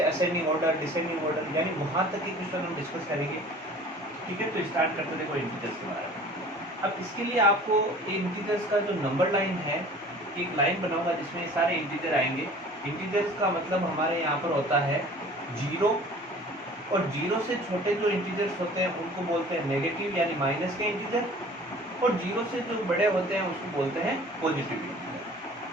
असेंडिंग ऑर्डर, डिसेंडिंग ऑर्डर, यानी वहाँ तक के क्वेश्चन हम डिस्कस करेंगे। ठीक है, तो स्टार्ट करते देखो इंटीजर्स के बारे में। अब इसके लिए आपको इंटीजर्स का जो नंबर लाइन है, एक लाइन बनाऊंगा जिसमें सारे इंटीजर आएंगे। इंटीजर्स का मतलब हमारे यहाँ पर होता है जीरो, और जीरो से छोटे जो इंटीजर्स होते हैं उनको बोलते हैं नेगेटिव यानी माइनस के इंटीजर, और जीरो से जो बड़े होते हैं उसको बोलते हैं पॉजिटिव इंटीजर।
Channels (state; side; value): normal; both; correlation 0.46